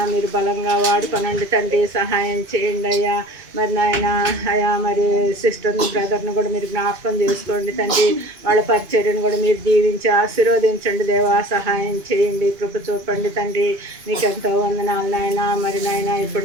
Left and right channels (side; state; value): left; late; 2.5 ms